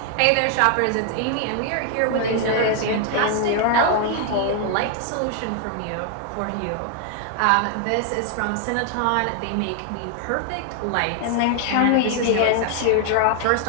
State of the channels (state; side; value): different; both; correlation 0.00